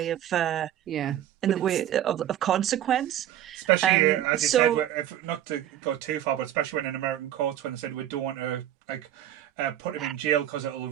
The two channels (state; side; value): quieter; left; 11.8 dB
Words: of of consequence. Especially as you said, if not to go too far, but especially when in American courts when they said we don't want to put him in jail because